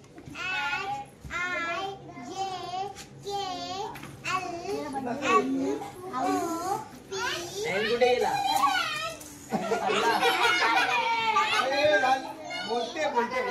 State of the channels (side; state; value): both; identical; correlation 1.00